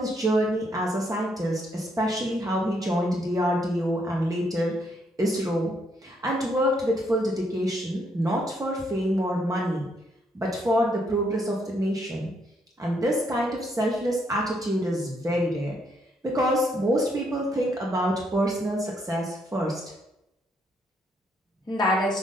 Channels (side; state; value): both; normal; correlation 0.73